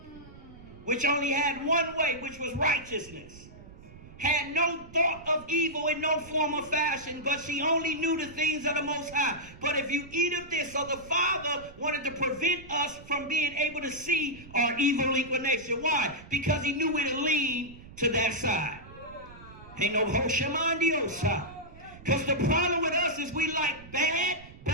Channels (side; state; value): right; noise; rumble, 19 dB below the sound